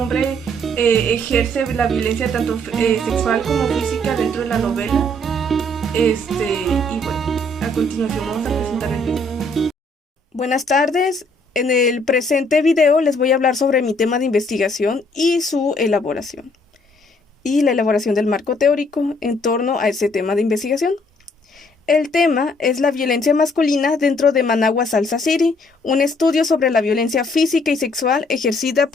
ejerce la violencia tanto sexual como física dentro de la novela. Y bueno, a continuación vamos a presentar el video. Buenas tardes. En el presente video les voy a hablar sobre mi tema de investigación y su elaboración, y la elaboración del marco teórico en torno a ese tema de investigación. El tema es la violencia masculina dentro de Managua Salsa City, un estudio sobre la violencia física y sexual ejercida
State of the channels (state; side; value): normal; both; correlation 0.65